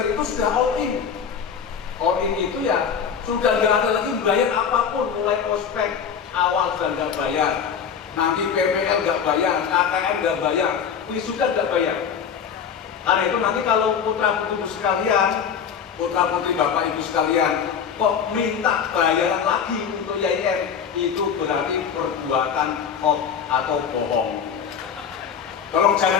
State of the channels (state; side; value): quieter; right; 7.3 dB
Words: itu sudah all in. All in itu ya sudah nggak ada lagi bayar apapun, mulai ospek awal sudah nggak bayar, nanti PPL nggak bayar, KKN nggak bayar, wisuda nggak bayar. Karena itu nanti kalau putra putri sekalian, putra putri bapak ibu sekalian, kok minta bayaran lagi untuk YIN, itu berarti perbuatan hoax atau bohong. Tolong